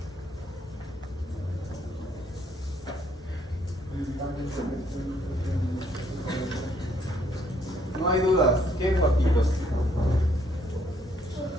No hay dudas. ¿Qué, papitos?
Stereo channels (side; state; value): both; normal; correlation 0.68